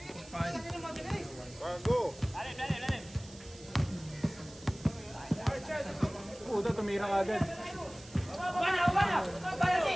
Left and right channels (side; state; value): right; noise; hiss, 20 dB below the sound